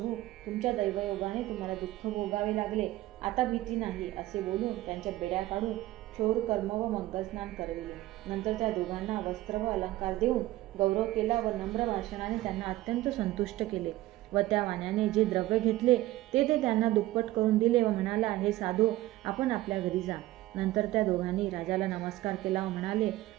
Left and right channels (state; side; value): quieter; left; 16.5 dB